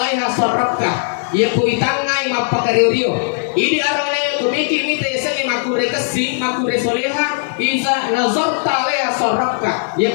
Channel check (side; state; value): right; silent; digital silence